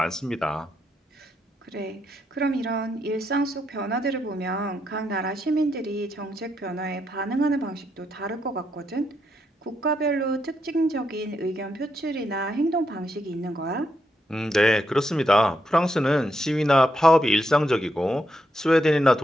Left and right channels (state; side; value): normal; both; correlation 0.80